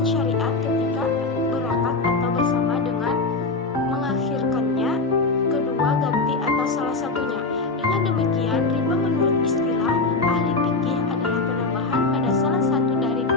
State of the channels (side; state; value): right; quieter; 3.6 dB